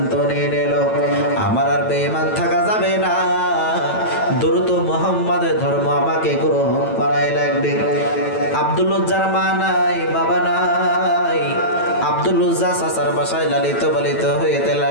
নিয়ে নিল, আমার আর বেঈমান থাকা যাবে না, দ্রুত মুহাম্মাদের ধর্ম আমাকে গ্রহণ করাই লাগবে। আব্দুল উজ্জার মা নাই, বাবা নাই। আব্দুল উজ্জা চাচার বাসায় লালিত পালিত হইতে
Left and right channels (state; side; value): late; right; 9.1 ms